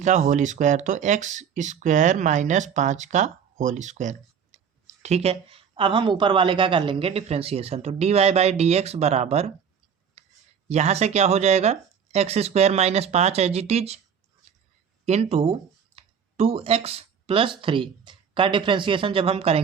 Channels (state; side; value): quieter; left; 7.3 dB